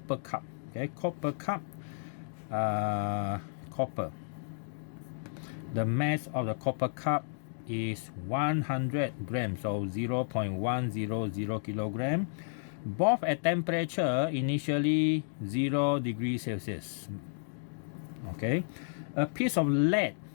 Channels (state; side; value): silent; right; digital silence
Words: cup. Okay, copper cup. Copper. The mass of the copper cup is 100 grams, so 0.100 kilogram. Both at temperature initially 0 degrees Celsius. Okay, a piece of lead.